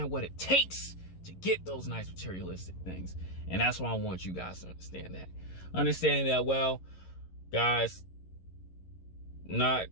what it takes to get those nice materialistic things. And that's why I want you guys to understand that. Understand that, well, guys,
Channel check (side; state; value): right; late; 11 ms